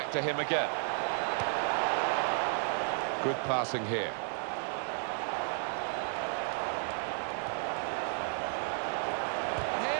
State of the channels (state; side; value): silent; left; 56 dB below the other